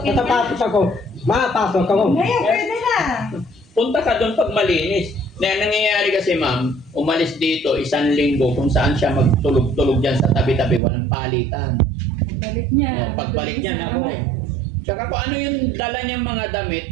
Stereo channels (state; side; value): drops out; left; at 10.8 s